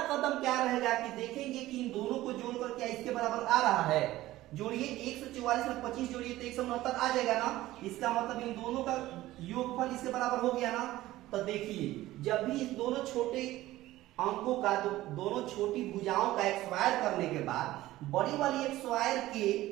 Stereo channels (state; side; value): quieter; left; 16.2 dB